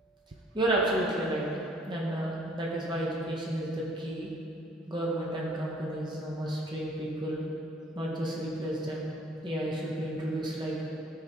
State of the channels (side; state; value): both; normal; correlation 0.58